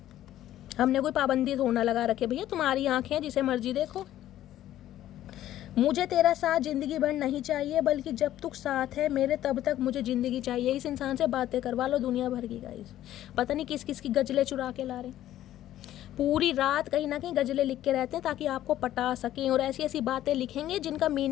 हमने कोई पाबंदी थोड़ा लगा रखे भैया, तुम्हारी आंखें जिसे मर्जी देखो। मुझे तेरा साथ ज़िंदगी भर नहीं चाहिए, बल्कि जब तक साथ है मेरे तब तक मुझे ज़िंदगी चाहिए। इस इंसान से बातें करवा लो दुनिया भर की गाइस, पता नहीं किस किस की गजलें चुरा के ला रहे हैं। पूरी रात कहीं ना कहीं गजलें लिख के रहते हैं ताकि आपको पटा सकें, और ऐसी ऐसी बातें लिखेंगे जिनका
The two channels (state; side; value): quieter; right; 13.0 dB